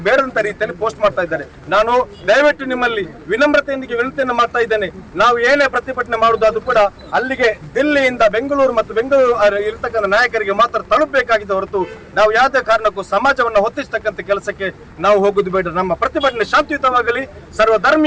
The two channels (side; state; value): both; identical; correlation 1.00